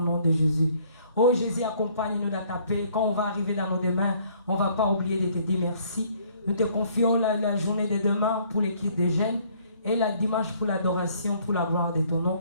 de Jésus. Oh Jésus, accompagne-nous dans ta paix. Quand on va arriver dans nos demain, on ne va pas oublier de te dire merci. Nous te confions la journée de demain pour l'équipe des jeunes et la dimanche pour l'adoration, pour la gloire de ton nom.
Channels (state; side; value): inverted; both; correlation -0.61